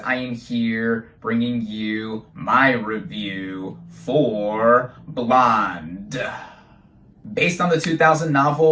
am here bringing you my review for Blonde. Based on the 2000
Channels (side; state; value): both; identical; correlation 1.00